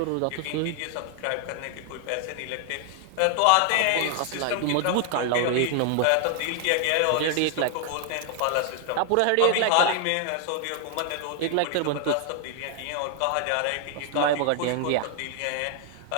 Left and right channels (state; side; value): different; both; correlation 0.00